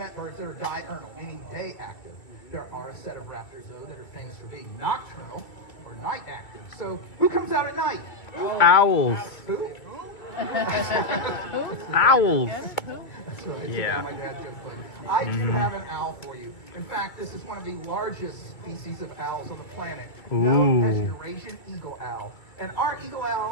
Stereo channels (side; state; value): right; late; 2.4 ms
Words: birds that are diurnal, meaning day active. There are a set of raptors, though, that are famous for being nocturnal or night active. So, who comes out at night? Owls. Who? Owls. That's right. Yeah. My dad joked, but I do have an owl for you. In fact, this is one of the largest species of owls on the planet, known as Eurasian eagle owl. And our eagle